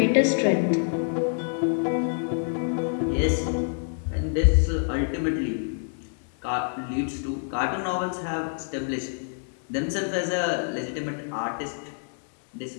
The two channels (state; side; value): silent; right; digital silence